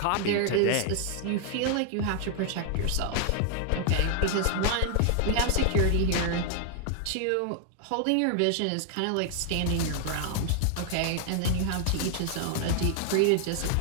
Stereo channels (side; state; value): both; different; correlation 0.00